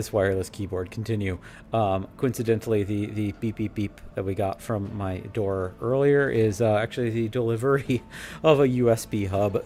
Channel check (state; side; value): identical; both; correlation 1.00